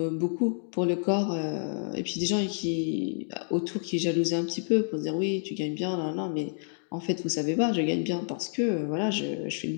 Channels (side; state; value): right; silent; 59 dB below the other